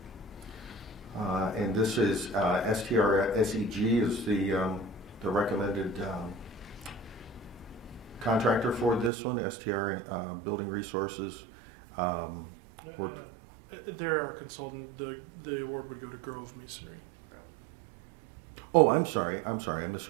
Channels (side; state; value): left; drops out; at 9.1 s